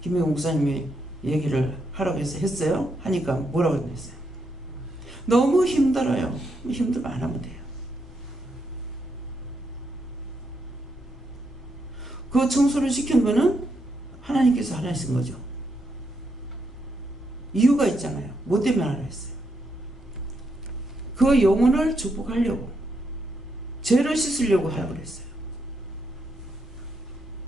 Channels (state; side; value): normal; both; correlation 0.80